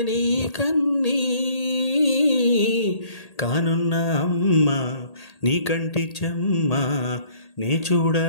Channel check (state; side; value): late; right; 1.8 ms